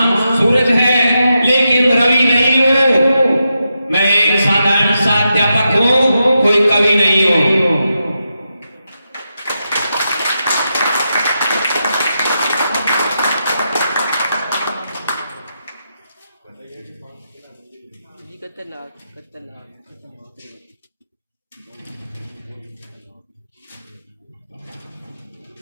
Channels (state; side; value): inverted; both; correlation -0.86